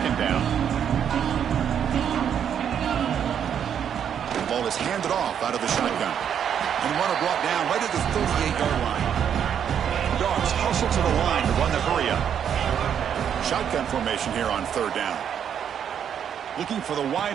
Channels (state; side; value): quieter; left; 8.6 dB